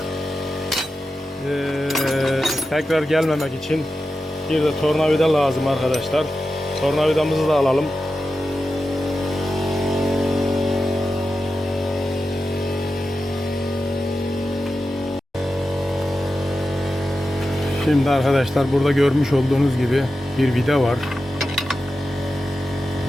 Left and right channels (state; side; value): normal; both; correlation 0.92